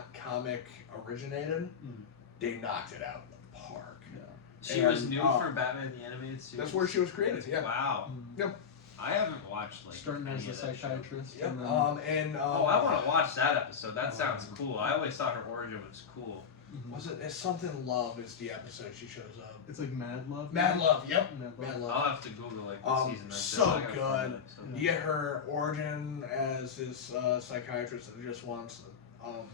comic originated, they knocked it out of the park. Yeah. She was And, new for Batman the Animated Series. That's where she was created. Yeah. Wow. Yep. I haven't watched like Starting any as a of that show. psychiatrist. Yep. And then, Oh, I want to watch that episode. That sounds cool. I always thought her origin was cool. Was it? It's something Love is the episode she shows up. it's like Mad Love. Mad Love. Yep. Mad Love. Mad Love. I'll have to Google like the season. That's So it. I gotta good. find it, so. You get her origin as this psychiatrist that just wants To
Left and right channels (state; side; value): quieter; right; 6.7 dB